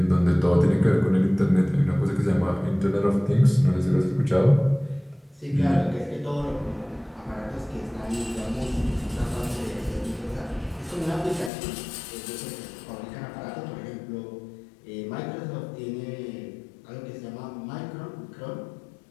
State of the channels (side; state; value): right; drops out; at 11.5 s